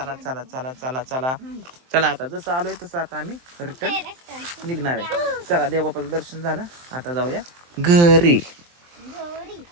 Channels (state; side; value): late; left; 23 ms